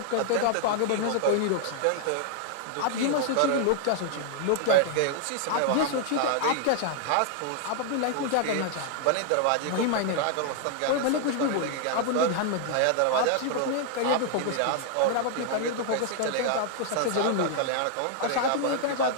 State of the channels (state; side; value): different; both; correlation 0.00